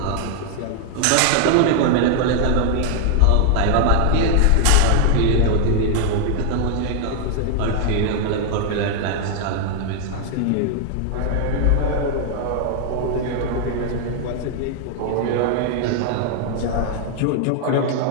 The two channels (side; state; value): both; different; correlation 0.00